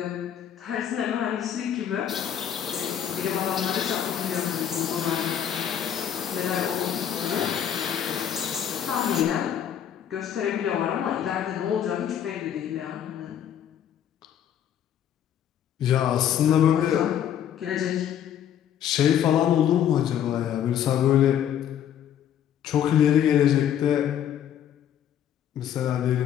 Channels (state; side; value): quieter; right; 9.7 dB